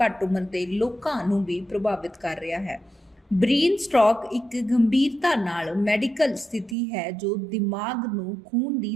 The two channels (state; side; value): drops out; left; at 6.8 s